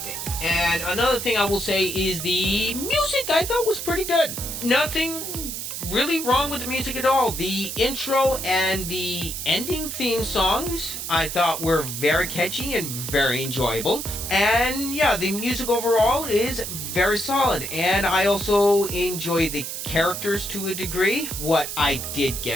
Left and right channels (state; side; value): noise; right; hiss, 6 dB below the sound